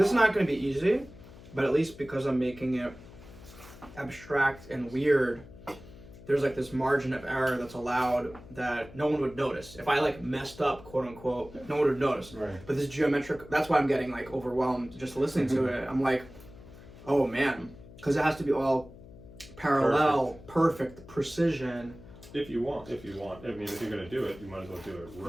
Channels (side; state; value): left; noise; hum, 19 dB below the sound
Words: is not going to be easy, but at least because I'm making it abstract and weird, there's like this margin of error that's allowed that no one would notice. If I like messed up, quote unquote, no one would notice. Right. But this geometric, that's why I'm getting like overwhelmed just listening to it. I'm like, oh man, because it has to be all parallel, perfect precision. If you want. I mean, if you're gonna do it, you might as well do it